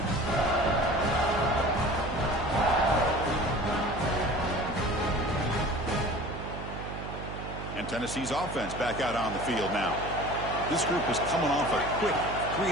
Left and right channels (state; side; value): noise; right; hum, 9 dB below the sound